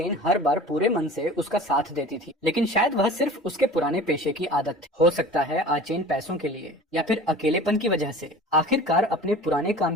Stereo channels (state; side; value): normal; both; correlation 0.41